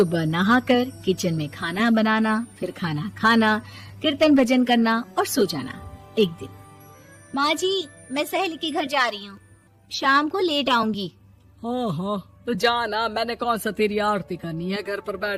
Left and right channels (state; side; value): identical; both; correlation 1.00